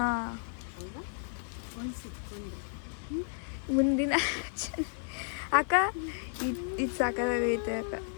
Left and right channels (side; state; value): right; silent; 56 dB below the other